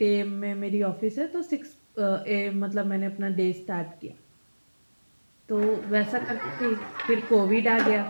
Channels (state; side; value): inverted; both; correlation -1.00